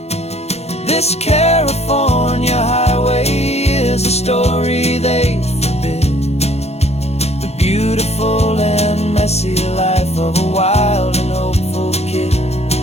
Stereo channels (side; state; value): right; late; 0.31 ms